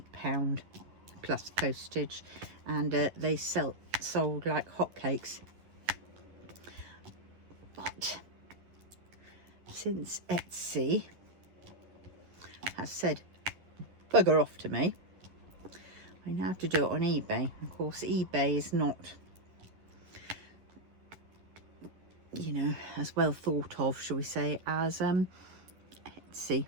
plus postage, and they sold like hotcakes. But since Etsy has said bugger off to me, I now have to do it on eBay. Of course, eBay is not, you know, as well thought of, shall we say, as Etsy.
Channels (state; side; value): late; left; 11 ms